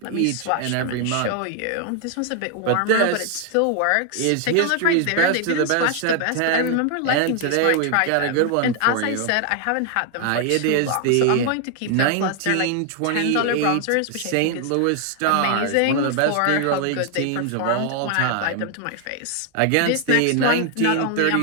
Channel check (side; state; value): both; different; correlation 0.00